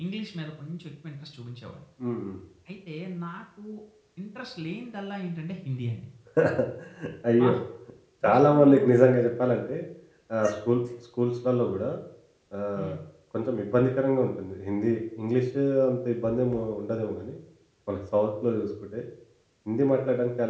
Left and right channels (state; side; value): identical; both; correlation 1.00